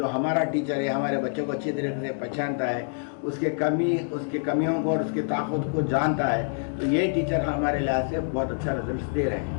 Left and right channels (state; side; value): silent; right; 61 dB below the other